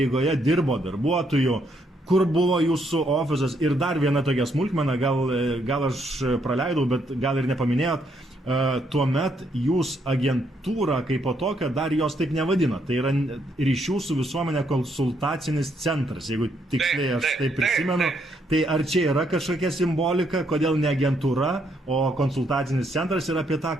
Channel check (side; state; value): both; normal; correlation 0.74